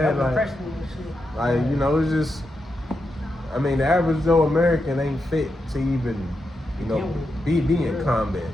Like, you know, it's just, I mean, the average Joe American ain't fit to even, you know, be in combat.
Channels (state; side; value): normal; both; correlation 0.86